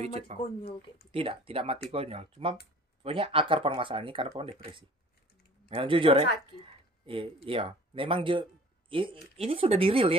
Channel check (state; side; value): normal; both; correlation 0.49